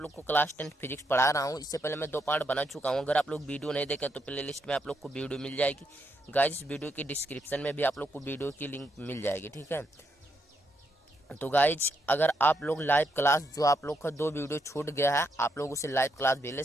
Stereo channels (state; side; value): normal; both; correlation 0.78